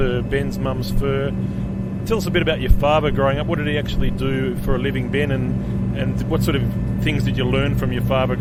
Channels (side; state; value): both; identical; correlation 1.00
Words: Ben's mum's fur. Tell us a bit about your father growing up. What did he actually do for a living, Ben, and what sort of things did you learn from your father